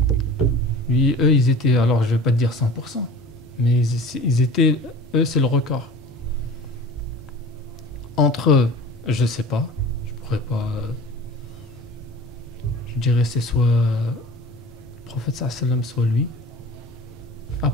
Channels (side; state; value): both; normal; correlation 0.40